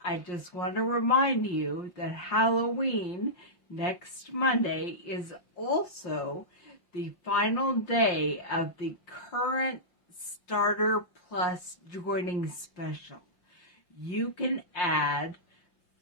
I just want to remind you that Halloween next Monday is also the final day of the current Starter Plus joining special. You can add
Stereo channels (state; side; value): late; right; 5.6 ms